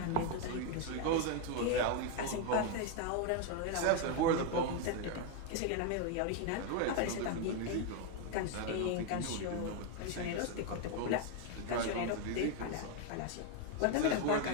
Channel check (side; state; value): both; different; correlation 0.01